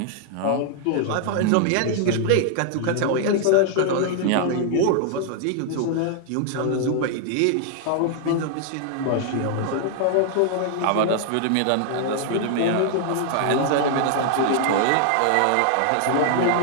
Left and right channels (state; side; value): different; both; correlation 0.00